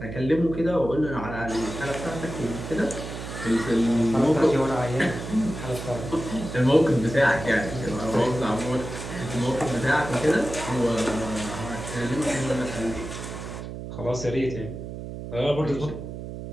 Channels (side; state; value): right; noise; hum, 9 dB below the sound